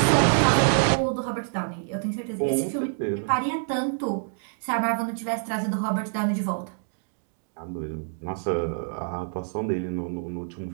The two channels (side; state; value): left; silent; digital silence